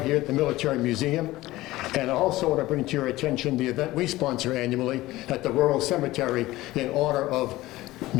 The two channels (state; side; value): quieter; right; 17.7 dB